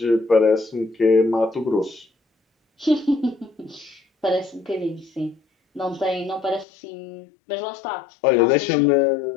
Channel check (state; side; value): drops out; right; at 6.7 s